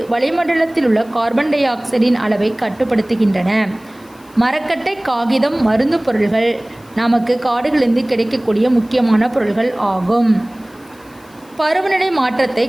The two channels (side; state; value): left; noise; hiss, 29 dB below the sound